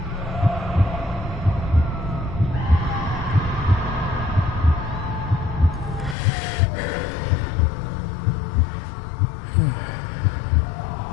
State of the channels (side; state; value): right; drops out; at 6.2 s